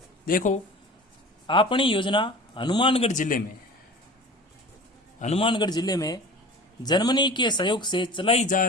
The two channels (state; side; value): normal; both; correlation 0.38